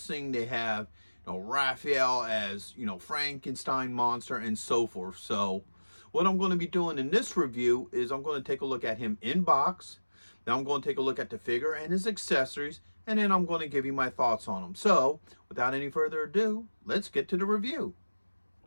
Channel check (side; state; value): both; inverted; correlation -1.00